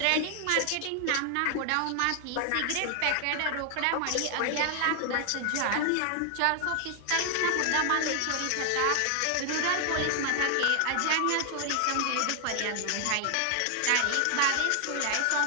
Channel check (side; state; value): both; different; correlation 0.00